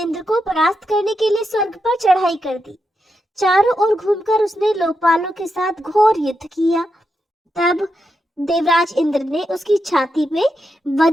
को परास्त करने के लिए स्वर्ग पर चढ़ाई कर दी। चारों ओर घूमकर उसने लोकपालों के साथ घोर युद्ध किया। तब देवराज इंद्र ने उसकी छाती में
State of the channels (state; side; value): normal; both; correlation 0.85